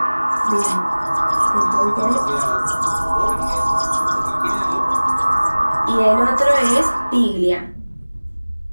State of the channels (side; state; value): both; inverted; correlation -1.00